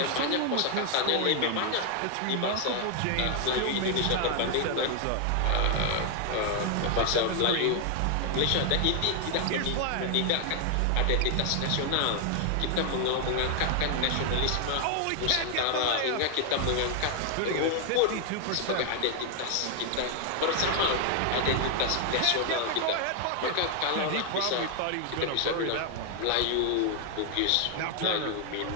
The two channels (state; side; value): different; both; correlation 0.00